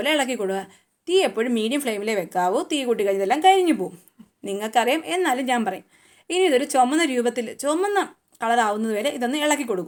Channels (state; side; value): identical; both; correlation 1.00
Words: ഇളക്കി കൊടുക്കുക. തീ എപ്പോഴും മീഡിയം ഫ്ലെയിമിലേ വെക്കാവൂ. തീ കൂട്ടി കഴിഞ്ഞതെല്ലാം കരിഞ്ഞു പോകും. നിങ്ങൾക്കറിയാം, എന്നാലും ഞാൻ പറയും. ഇനി ഇതൊരു ചുമന്ന കളറാവുന്നത് വരെ ഇതൊന്ന് ഇളക്കി